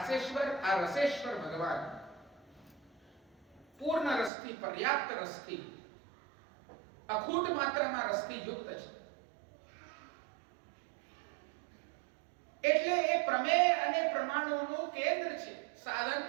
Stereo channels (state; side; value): drops out; left; at 4.3 s